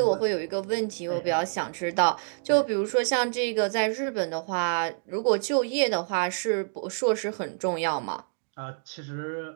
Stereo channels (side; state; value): left; silent; digital silence